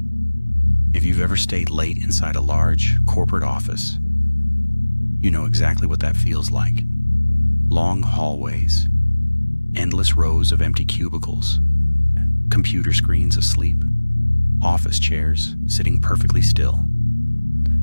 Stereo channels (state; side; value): inverted; both; correlation -1.00